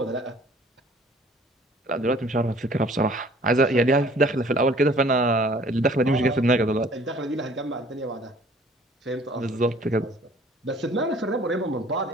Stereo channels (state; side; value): normal; both; correlation 0.54